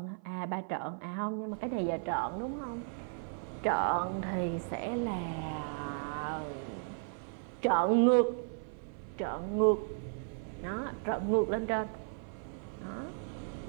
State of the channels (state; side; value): silent; left; 54 dB below the other